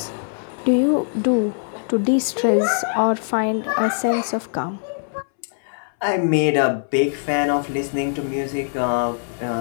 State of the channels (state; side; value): silent; right; 64 dB below the other